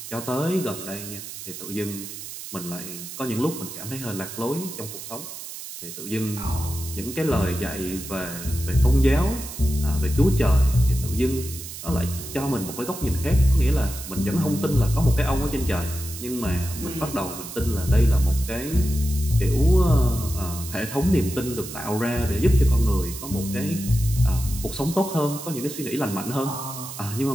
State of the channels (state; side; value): noise; right; hiss, 11 dB below the sound